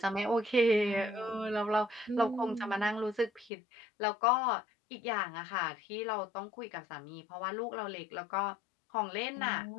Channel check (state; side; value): drops out; right; at 3.5 s